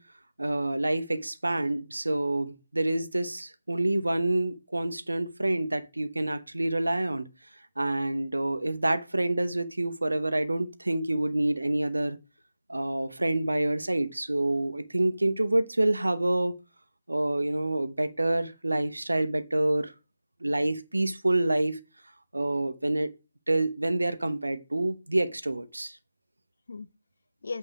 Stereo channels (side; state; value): both; inverted; correlation -0.97